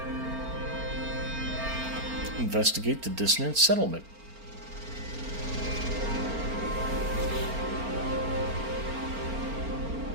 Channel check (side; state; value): left; late; 4.4 ms